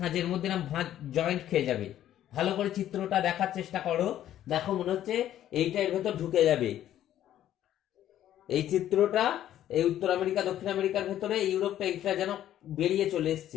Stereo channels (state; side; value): quieter; right; 11.9 dB